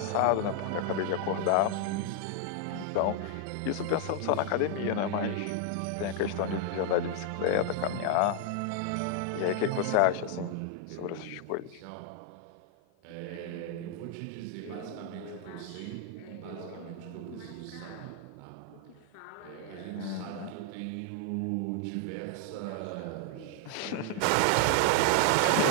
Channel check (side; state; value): both; different; correlation 0.00